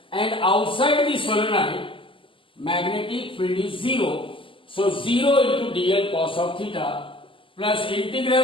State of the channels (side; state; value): right; late; 0.25 ms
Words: and outside the solenoid magnetic field is 0. So 0 into dl cos of theta plus